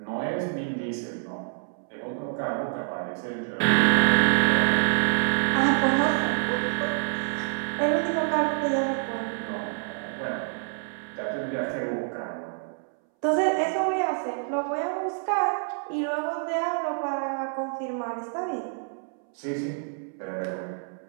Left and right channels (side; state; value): left; silent; 60 dB below the other